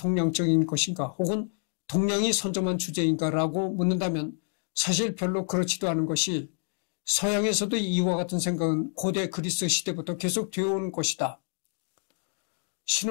것인가 혹은 동양이 선점한 주제인가라고 묻는다면 사실 별로 그렇지도 않은 것이 서양에서도 이와 같은 생각은 고대 그리스 시대부터 계속 되어온 것이다.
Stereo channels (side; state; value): right; silent; 57 dB below the other